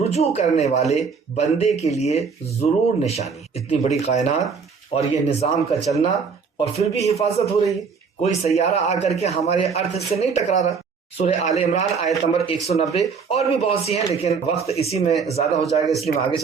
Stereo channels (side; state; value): left; quieter; 5.5 dB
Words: کرنے والے بندے کے لیے ضرور نشانی۔ اتنی بڑی کائنات اور یہ نظام کا چلنا اور پھر بھی حفاظت ہو رہی ہے، کوئی سیارہ آ کر کے ہمارے ارتھ سے نہیں ٹکرا رہا۔ سورہ آل عمران آیت نمبر 190، اور بھی بہت سی ہیں لیکن وقت اسی میں زیادہ ہو جائے گا اس لیے میں آگے